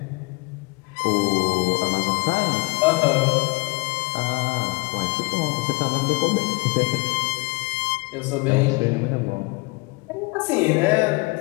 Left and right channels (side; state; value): right; quieter; 26.1 dB